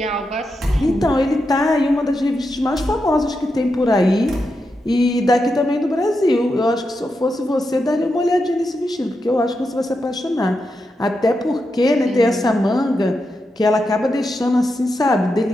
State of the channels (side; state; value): both; normal; correlation 0.86